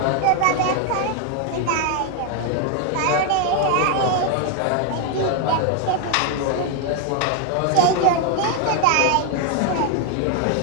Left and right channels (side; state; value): both; different; correlation 0.01